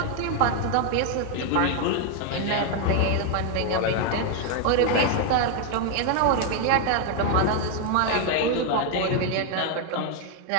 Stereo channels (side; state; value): both; different; correlation 0.00